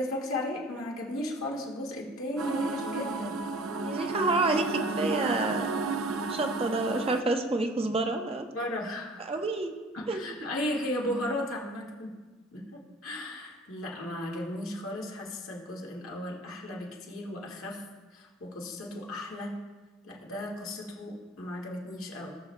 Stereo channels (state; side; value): normal; both; correlation 0.47